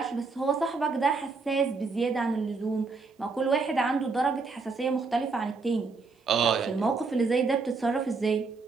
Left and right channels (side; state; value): left; quieter; 4.3 dB